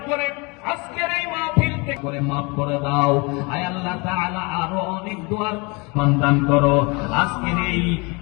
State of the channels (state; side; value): quieter; right; 28.5 dB